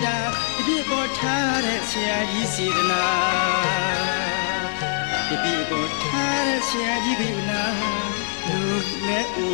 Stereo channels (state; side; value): silent; right; digital silence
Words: တာတတိပေါ်ထားတဲ့ဆရာကြီးစေတနာတတိပေါ်ထားတဲ့ဆရာကြီးကနာလူနဲ့အိ